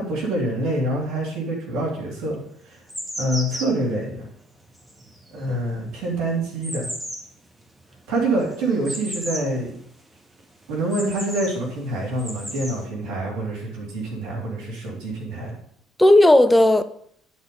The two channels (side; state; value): both; normal; correlation 0.74